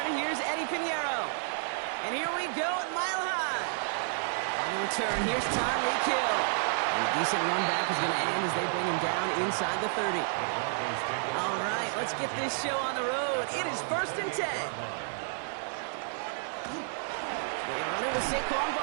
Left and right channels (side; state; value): left; silent; 57 dB below the other